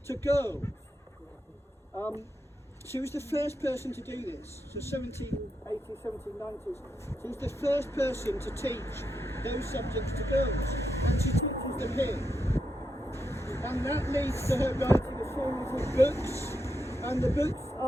to girls. She was the first person to do this, so 1780s, 1790s. She was the first person to teach those subjects to girls, and she teaches them here. And that leads to her writing a series of books, and the books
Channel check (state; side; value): normal; both; correlation 0.84